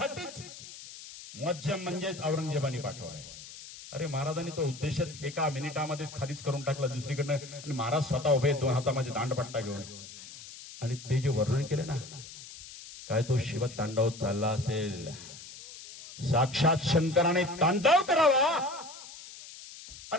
मुअज्जम म्हणजेच औरंगजेबाने पाठवलाय. अरे महाराजांनी तो उद्देश एका मिनिटामध्ये खालीच करून टाकला दुसरीकडनं, आणि महाराज स्वतः उभे 2 हातामध्ये दांडपट्टा घेऊन. आणि ते जे वर्णन केले ना, काय तो शिव तांडव चालला असेल, साक्षात शंकराने तांडव करावा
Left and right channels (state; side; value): noise; left; hiss, 15 dB below the sound